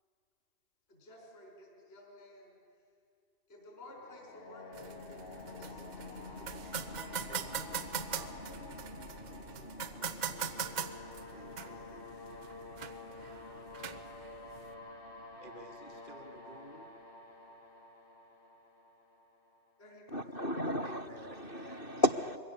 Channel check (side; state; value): right; late; 2.1 ms